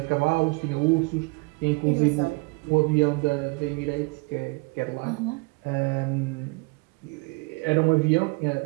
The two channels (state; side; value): quieter; left; 28.9 dB